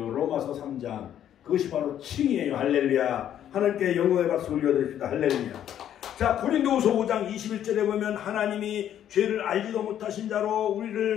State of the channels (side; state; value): right; quieter; 10.5 dB